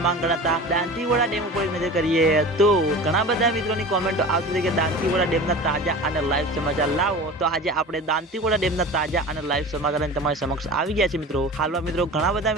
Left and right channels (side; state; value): both; normal; correlation 0.35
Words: ગણાતા દાંતીવાડા ડેમ ઉપર નજર કરીએ તો ઘણા બધા મિત્રોની કોમેન્ટો આવતી હતી કે દાંતીવાડા ડેમના તાજા અને લાઈવ સમાચાર લાવો। તો આજે આપણે દાંતીવાડા ડેમના તાજા અને લાઈવ સમાચાર તમારી સમક્ષ આવી ગયા છે મિત્રો। હાલમાં મિત્રો ઘણા બધા